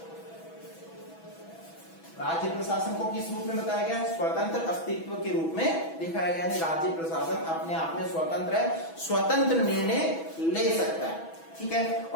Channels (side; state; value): right; late; 6.1 ms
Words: राज्य प्रशासन को किस रूप में बताया गया? स्वतंत्र अस्तित्व के रूप में दिखाया गया है। राज्य प्रशासन अपने आप में स्वतंत्र है, स्वतंत्र निर्णय ले सकता है। ठीक है।